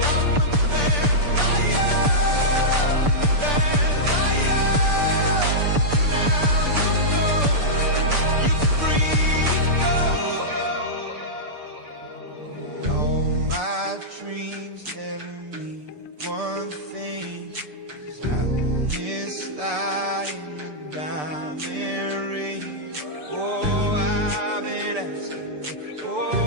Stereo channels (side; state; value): left; late; 6.8 ms